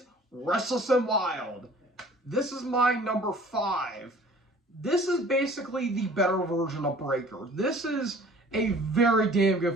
Restless and Wild. This is my number 5. This is basically the better version of Breaker. This is a very damn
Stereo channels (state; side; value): normal; both; correlation 0.50